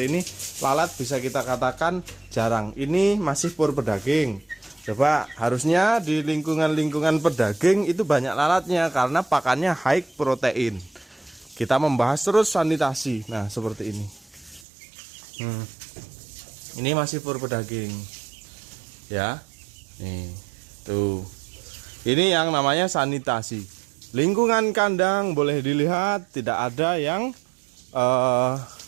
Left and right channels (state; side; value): drops out; left; at 14.7 s